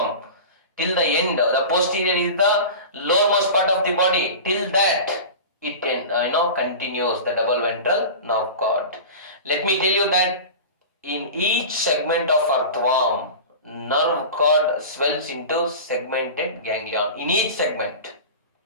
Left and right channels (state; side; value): inverted; both; correlation -0.32